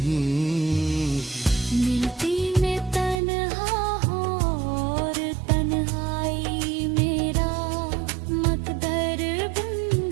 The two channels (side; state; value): left; drops out; at 3.2 s